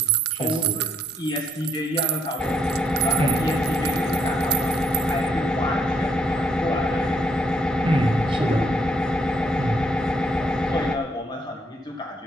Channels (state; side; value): normal; both; correlation 0.68